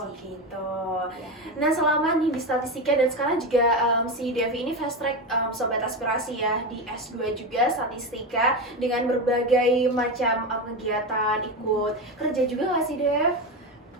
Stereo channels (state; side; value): normal; both; correlation 0.17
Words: gitu. Nah selama nih di statistika dan sekarang juga si Devi ini fast track sobat aspirasi ya di S2 juga statistika dengan berbagai macam kegiatan, ikut kerja juga nggak sih Dev?